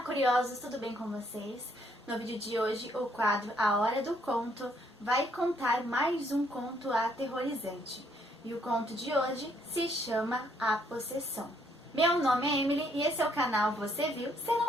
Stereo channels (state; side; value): normal; both; correlation 0.69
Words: curiosos, tudo bem com vocês? No vídeo de hoje, o quadro A Hora do Conto vai contar mais um conto aterrorizante. E o conto de hoje se chama A Possessão. Meu nome é Emily e esse é o canal Você Viu? Se